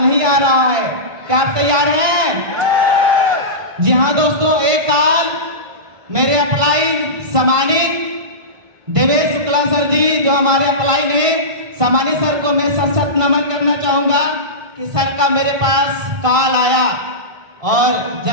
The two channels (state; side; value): late; left; 1.5 ms